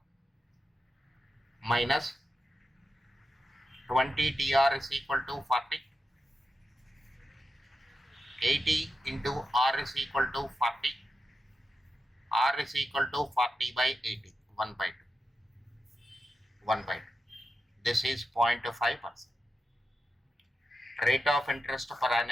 minus 20tr is equal to 40. 80 into r is equal to 40. R is equal to 40 by 80. 1 by 2. 1 by 2. This is 0.5%. Rate of interest per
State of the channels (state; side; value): normal; both; correlation 0.88